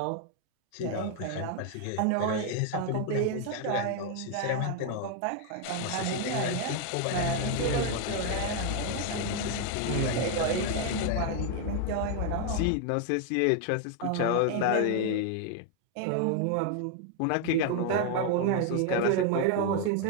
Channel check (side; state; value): both; different; correlation 0.00